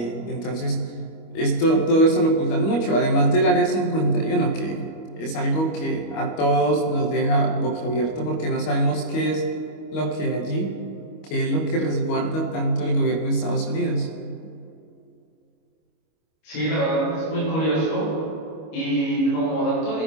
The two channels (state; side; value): late; right; 25 ms